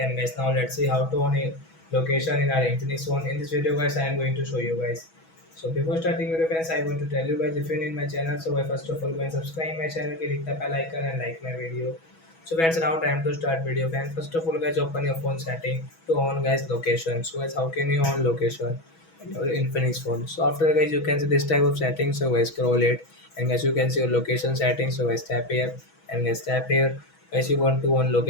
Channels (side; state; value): right; late; 6.2 ms